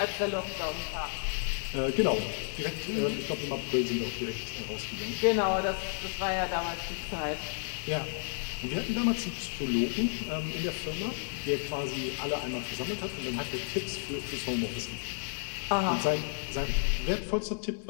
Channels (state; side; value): silent; right; 56 dB below the other